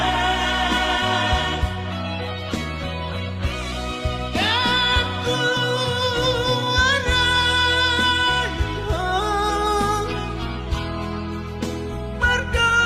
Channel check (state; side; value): identical; both; correlation 1.00